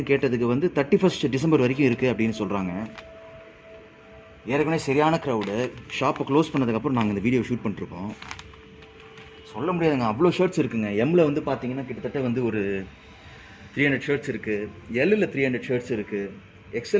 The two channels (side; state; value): both; identical; correlation 1.00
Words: கேட்டதுக்கு வந்து 31 டிசம்பர் வரைக்கும் இருக்குது அப்படின்னு சொல்கிறாங்க. ஏற்கனவே சரியான க்ரௌடு. ஷாப்பை க்ளோஸ் பண்ணதுக்கப்புறம் நாங்கள் இந்த வீடியோ ஷூட் பண்ணிருக்கோம். சொல்ல முடியாதுங்க, அவ்வளோ ஷர்ட்ஸ் இருக்குங்க. எம்மில் வந்து பார்த்தீங்கன்னா கிட்டத்தட்ட வந்து ஒரு 300 ஷர்ட்ஸ் இருக்குது. எல்லில் 300 ஷர்ட்ஸ் இருக்குது.